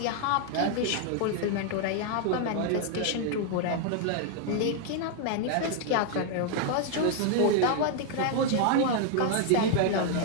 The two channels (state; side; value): different; both; correlation 0.00